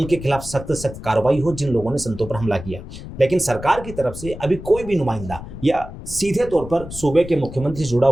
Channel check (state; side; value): noise; left; rumble, 12 dB below the sound